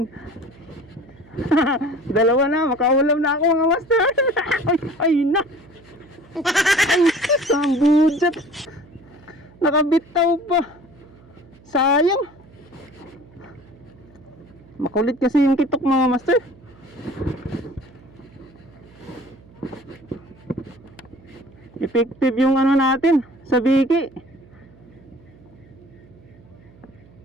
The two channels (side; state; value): right; noise; hum, 25 dB below the sound